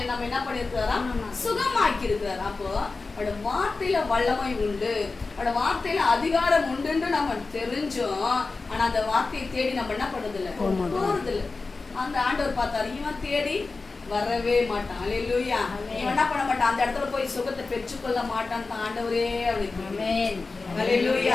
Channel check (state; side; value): quieter; right; 3.9 dB